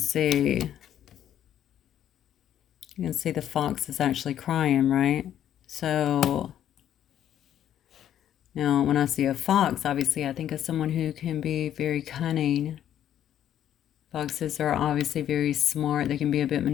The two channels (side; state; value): right; quieter; 10.7 dB